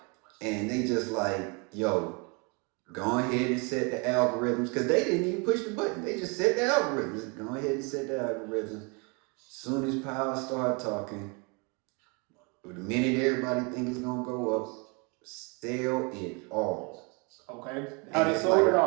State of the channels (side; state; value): left; quieter; 31.8 dB